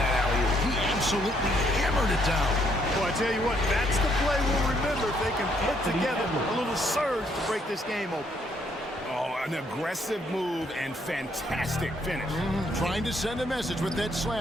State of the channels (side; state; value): both; normal; correlation 0.70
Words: alley-oop? He absolutely hammered it down. Boy, I tell you what, that's the play we'll remember if they can put together a little surge to break this game open. Oh, an aggressive move and fantastic finish. Trying to send a message with that